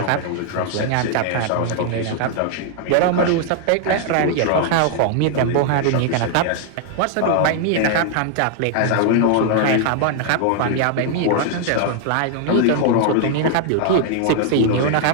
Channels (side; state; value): both; different; correlation 0.00